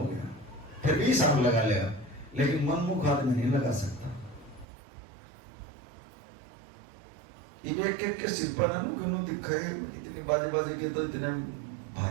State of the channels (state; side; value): drops out; left; at 4.7 s